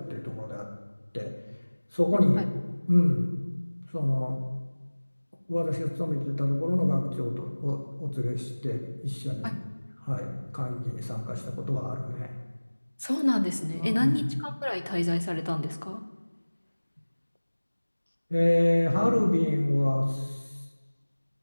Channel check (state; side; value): inverted; both; correlation -1.00